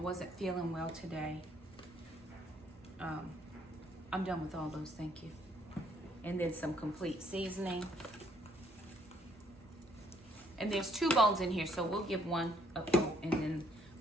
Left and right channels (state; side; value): normal; both; correlation 0.67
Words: feeling well today. I'm done with all those, thank you. And then some complete seasoning. And there's 2 bones in here, so we'll give one a coat and then